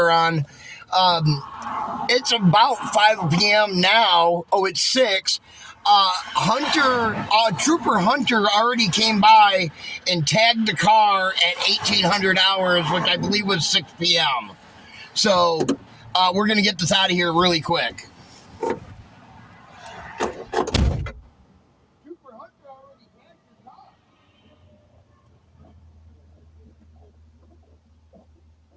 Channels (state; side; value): identical; both; correlation 1.00